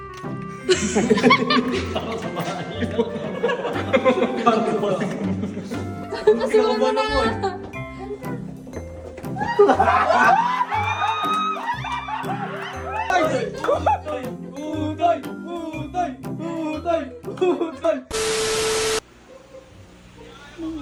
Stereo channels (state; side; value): identical; both; correlation 1.00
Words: Kasunod mo na. Ano